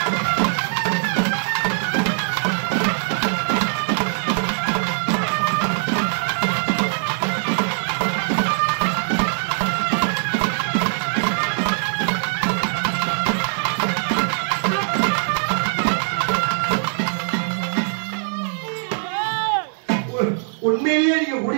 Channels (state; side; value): silent; left; 63 dB below the other